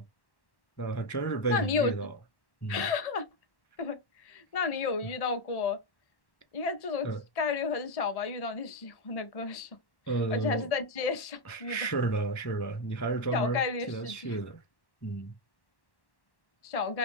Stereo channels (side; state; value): right; late; 1.1 ms